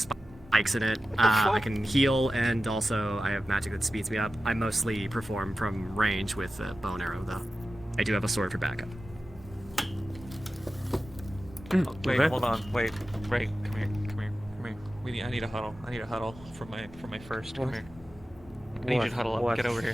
in it. I can heal, and also I have magic that speeds me up. I mostly perform from range with a bow and arrow, though. I do have a sword for backup. Oh, wait, hold on. Wait, Ray, come here. I need a huddle. I need a huddle for my first. Come here. I need you to huddle up. Get over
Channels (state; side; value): normal; both; correlation 0.94